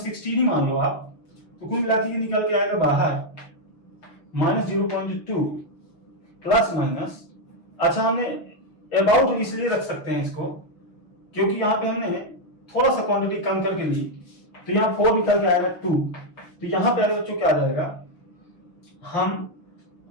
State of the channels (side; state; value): right; late; 6.1 ms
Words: ही मान लो आप, तो कुल मिला के ये निकल के आएगा बाहर माइनस 0.2 प्लस माइनस, अच्छा हमने अबाउट इसलिए रख सकते हैं इसको क्योंकि यहाँ पे हमने थोड़ा सा क्वांटिटी कम करके ली, तो यहाँ 4 निकल के आएगा 2, तो यहाँ पे बच्चों क्या आ जाएगा, हम